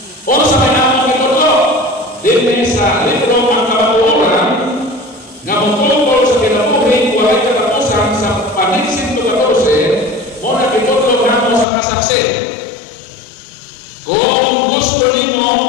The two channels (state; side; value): drops out; right; at 11.7 s